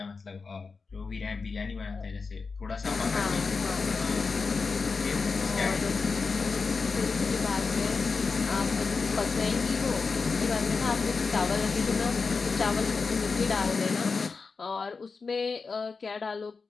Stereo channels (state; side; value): quieter; right; 4.6 dB